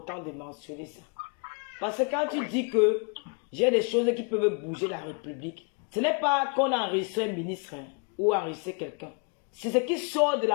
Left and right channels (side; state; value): right; quieter; 36.3 dB